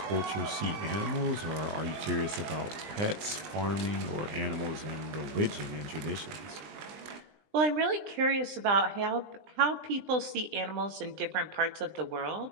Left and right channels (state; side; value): late; left; 20 ms